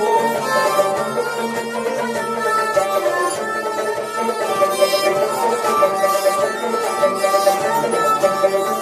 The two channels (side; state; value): both; identical; correlation 1.00